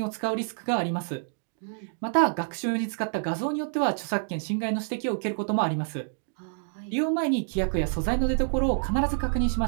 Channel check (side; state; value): left; silent; digital silence